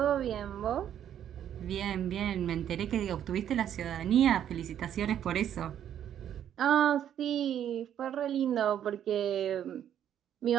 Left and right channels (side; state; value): left; quieter; 10.0 dB